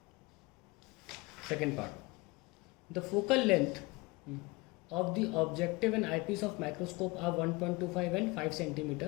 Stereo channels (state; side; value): quieter; right; 24.5 dB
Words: Second part, the focal length of the objective and eyepiece of microscope are 1.25 and 5